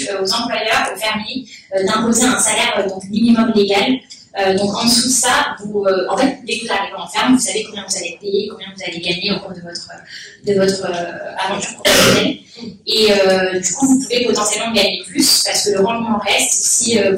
aux employeurs, aux fermiers, d'imposer un salaire donc minimum légal. Donc en dessous de ça, vous, en fait, dès que vous arrivez en ferme, vous savez combien vous allez payer, combien vous allez gagner au cours de votre aventure professionnelle. Et du coup, vous pouvez potentiellement gagner plus parce que le rendement reste si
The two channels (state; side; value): identical; both; correlation 1.00